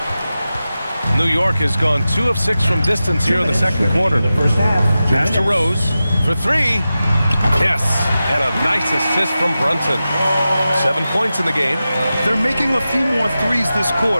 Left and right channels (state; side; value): inverted; both; correlation -0.93